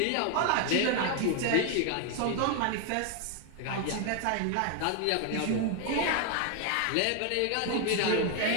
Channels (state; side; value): different; both; correlation 0.01